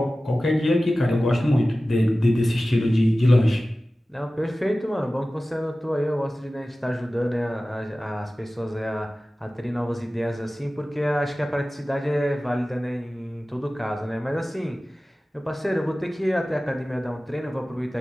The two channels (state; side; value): normal; both; correlation 0.96